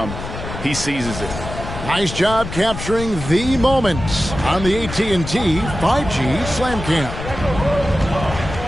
he seizes it. Nice job capturing the moments on the AT&T 5G Slam Cam.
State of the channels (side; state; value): left; noise; rumble, 8 dB below the sound